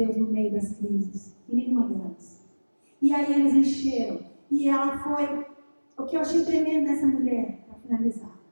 no meio das crises, em nenhuma delas. E aí eles encheram. E ela foi, o que eu achei tremendo nessa mulher, para finalizar.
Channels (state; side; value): inverted; both; correlation -1.00